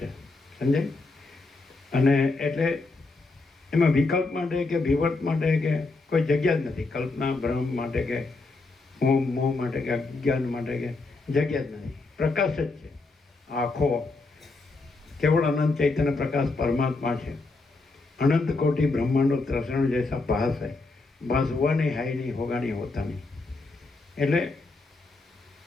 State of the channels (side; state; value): right; quieter; 3.5 dB